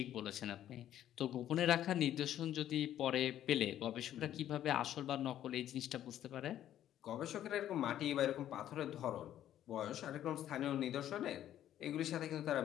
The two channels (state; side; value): quieter; right; 11.6 dB